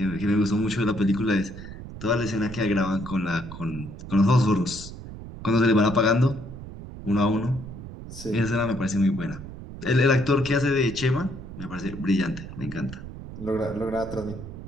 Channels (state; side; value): noise; right; rumble, 12 dB below the sound